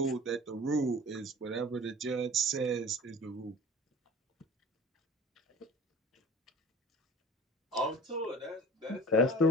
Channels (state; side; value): normal; both; correlation 0.41